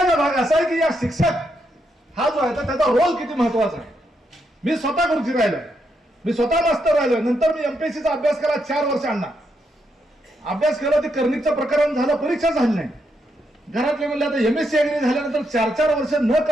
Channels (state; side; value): normal; both; correlation 0.80